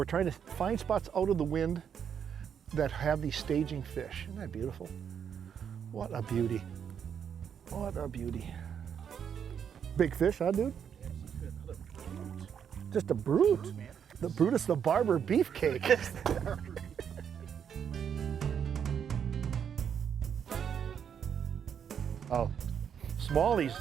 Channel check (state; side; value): quieter; left; 7.9 dB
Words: trying to find spots out of the wind that have these staging fish. Isn't that beautiful? What a beauty. What a beauty. Big fish, huh, dude? Just a brute. The Brutus the Barber beefcake. Oh,